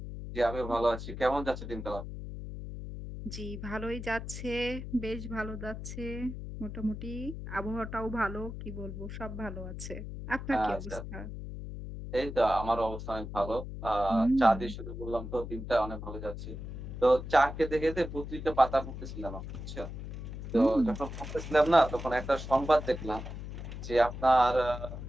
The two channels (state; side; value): noise; left; hum, 8 dB below the sound